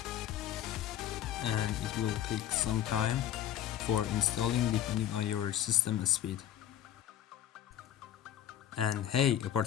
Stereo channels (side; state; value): right; quieter; 11.3 dB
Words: and it will take some time for installing depending on your system speed. And hey,